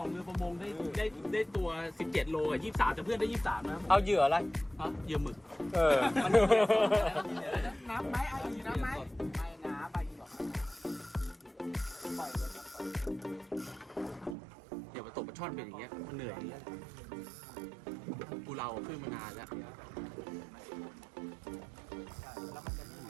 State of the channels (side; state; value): left; drops out; at 14.4 s